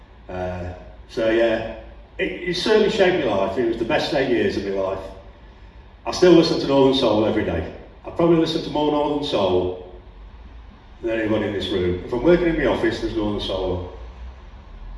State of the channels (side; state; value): both; identical; correlation 1.00